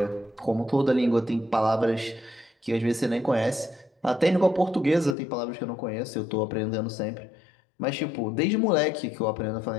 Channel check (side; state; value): right; drops out; at 5.2 s